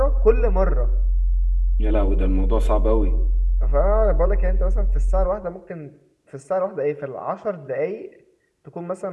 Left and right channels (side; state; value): both; identical; correlation 1.00